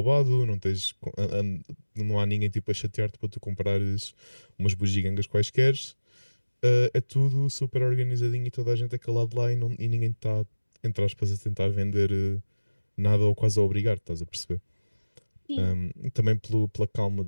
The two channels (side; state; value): both; inverted; correlation -1.00